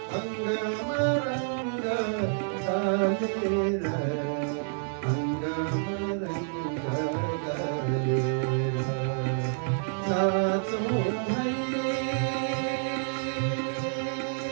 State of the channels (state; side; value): silent; left; 59 dB below the other